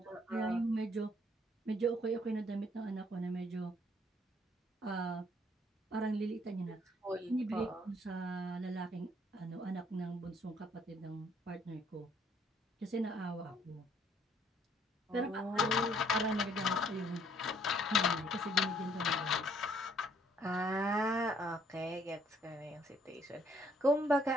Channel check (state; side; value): normal; both; correlation 0.64